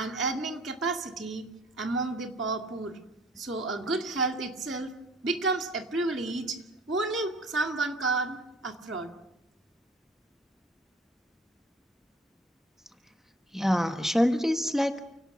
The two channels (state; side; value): normal; both; correlation 0.58